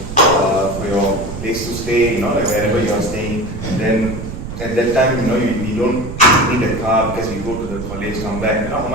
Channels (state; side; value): noise; right; rumble, 9 dB below the sound